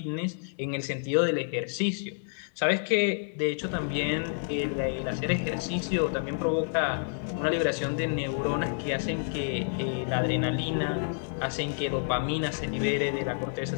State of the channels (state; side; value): silent; right; 59 dB below the other